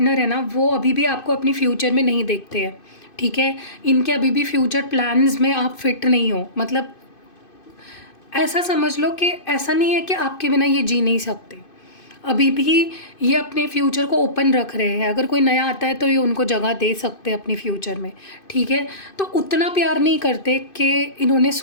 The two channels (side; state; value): right; late; 2.5 ms